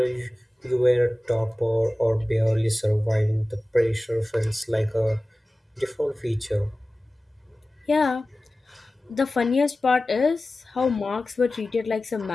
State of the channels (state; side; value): normal; both; correlation 0.97